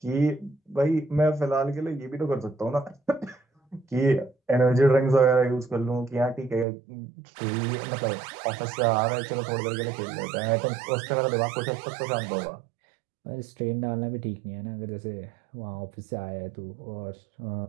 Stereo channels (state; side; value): drops out; left; at 6.7 s